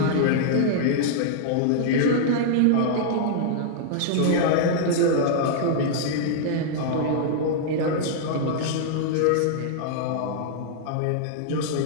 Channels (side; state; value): both; different; correlation -0.01